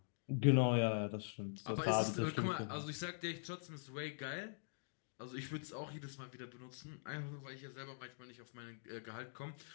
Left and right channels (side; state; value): right; silent; digital silence